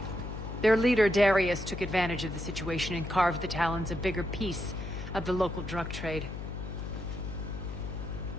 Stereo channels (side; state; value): left; noise; hum, 7 dB below the sound